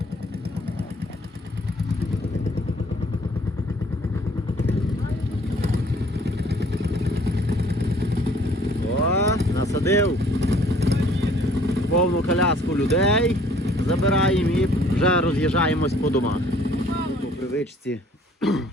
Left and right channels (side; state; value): both; normal; correlation 0.57